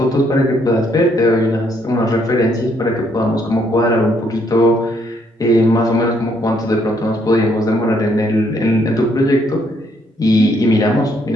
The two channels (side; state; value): both; normal; correlation 0.70